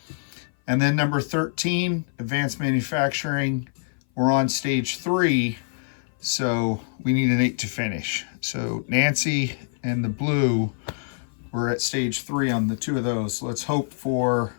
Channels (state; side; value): silent; right; 58 dB below the other